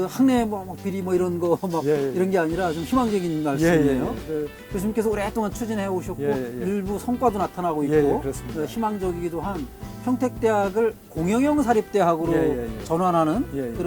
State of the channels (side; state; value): both; identical; correlation 1.00